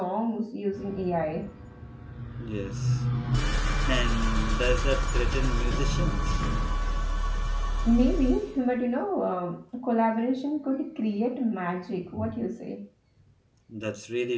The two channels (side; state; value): both; identical; correlation 1.00